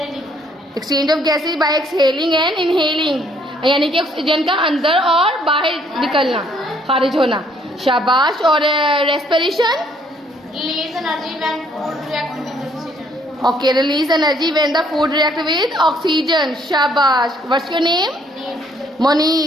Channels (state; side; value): normal; both; correlation 0.65